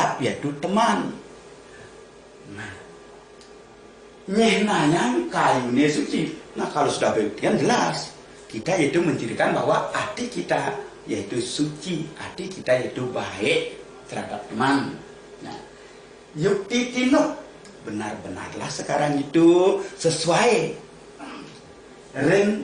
yaitu teman. Nah, nyehnanya kayune suci. Nah kalau sudah begitu jelas. Kita yaitu mencirikan bahwa hati kita yaitu suci, hati kita yaitu baik terhadap teman. Nah, yukti tinuk, benar-benarlah sekarang itu sesuai ring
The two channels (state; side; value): identical; both; correlation 1.00